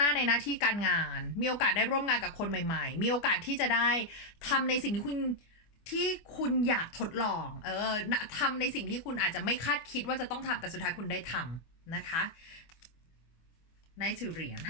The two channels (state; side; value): late; right; 25 ms